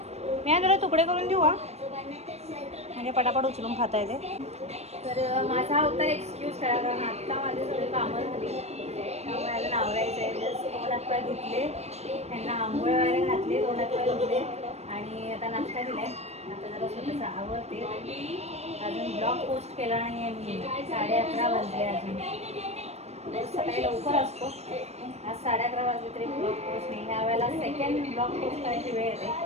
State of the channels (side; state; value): left; late; 0.31 ms